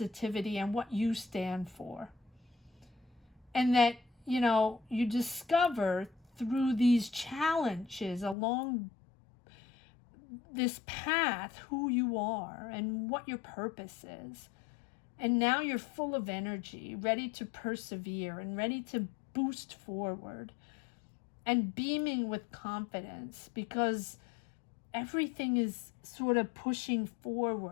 and what you stand for. And that, you discover through these challenges along this path who you are and what your purpose is. And now you're full of energy, ready to persevere and ready to boost forward and beaming with confidence, because everything is sort of pushing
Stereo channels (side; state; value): right; drops out; at 8.3 s